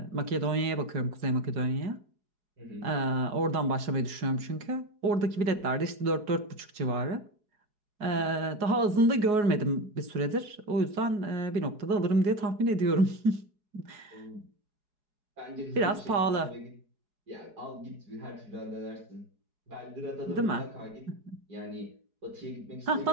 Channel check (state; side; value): late; left; 4.8 ms